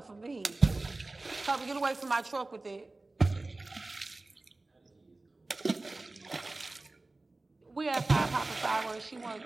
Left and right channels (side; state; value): left; quieter; 3.1 dB